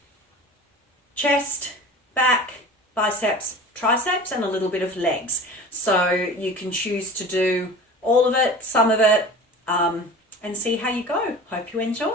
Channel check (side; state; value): both; normal; correlation 0.38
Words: chest, back, biceps, triceps, and a little bit of legs. So you can choose to do all of it, some of it, and see how you go. Hope you